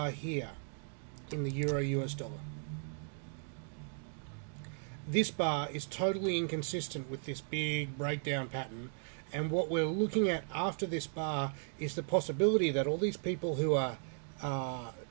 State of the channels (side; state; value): left; silent; 54 dB below the other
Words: here in the Euro US dollar, this bar is totally inconsistent with this big breakdown pattern, and what we're looking at after this bar is the possibility that all these people who